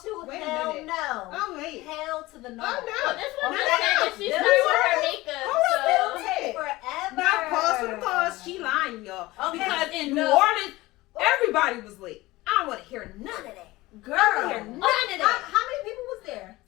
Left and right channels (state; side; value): quieter; right; 19.4 dB